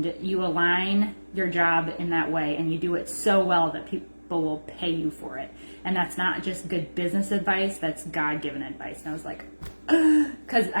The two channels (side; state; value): both; inverted; correlation -1.00